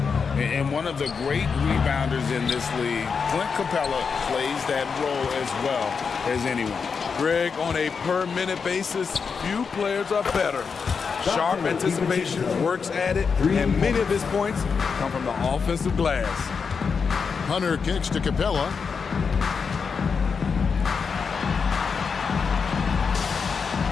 And one of the great rebounders in this league, Clint Capella, plays that role as well as anyone. Greg, on a per-minute basis, few players are better. Sharp anticipation, works at it, and many of his points come from the offensive glass. Hunter kicks to Capella.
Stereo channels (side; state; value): right; quieter; 5.7 dB